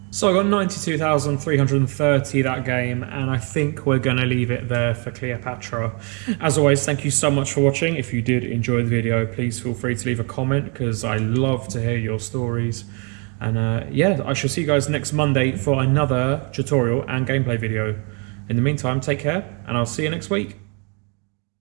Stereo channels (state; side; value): quieter; left; 35.7 dB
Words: So I got 92,330 that game, and I think we're going to leave it there for Cleopatra. As always, thank you so much for watching. If you did enjoy the video, please feel free to leave a comment, because I love to hear your stories. And yeah, I shall see you guys next Monday for another tutorial and gameplay video. In the meantime, take care, and I'll see you next week.